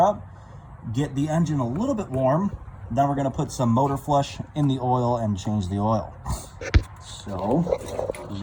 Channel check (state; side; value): identical; both; correlation 1.00